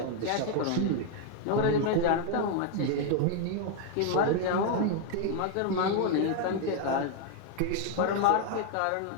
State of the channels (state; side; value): different; both; correlation 0.00